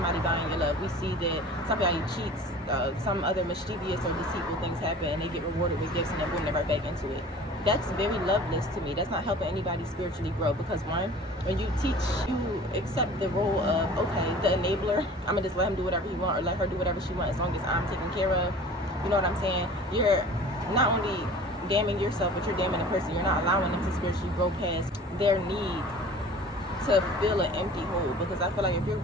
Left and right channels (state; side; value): normal; both; correlation 0.44